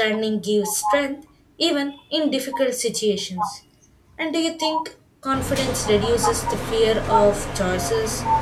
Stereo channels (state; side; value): identical; both; correlation 1.00